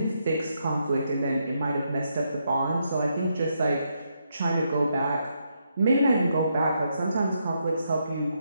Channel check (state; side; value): inverted; both; correlation -0.79